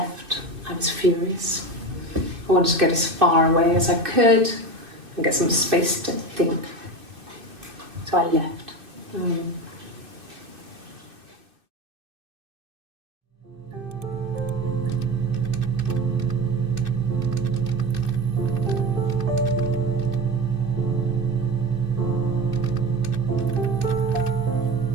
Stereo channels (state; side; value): late; left; 2.6 ms